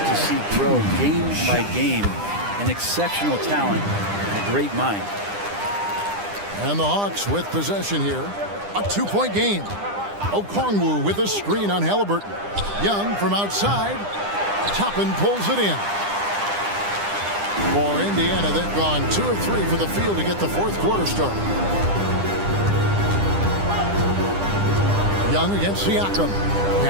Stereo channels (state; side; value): late; left; 9.9 ms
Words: see grow game by game. An exceptional talent and a great mind. And the Hawks with possession here. A 2-point game. Okongwu with a screen on Halliburton. Young from outside. Toppin pulls it in. For Indiana, they've gone 2 of 3 for the field to get the fourth quarter started. Young against Siakam.